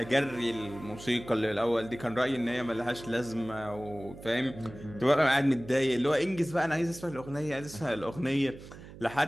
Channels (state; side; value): noise; right; hum, 16 dB below the sound